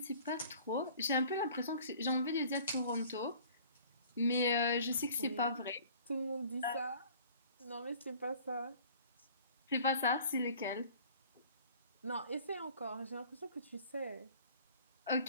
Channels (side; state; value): both; inverted; correlation -0.50